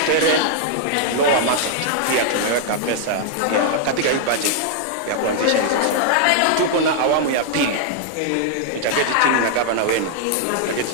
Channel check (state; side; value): different; both; correlation -0.01